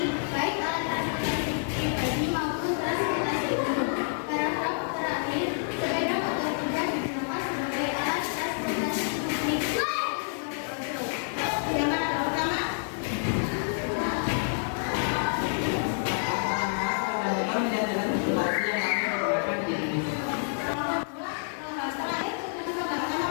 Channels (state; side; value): silent; right; digital silence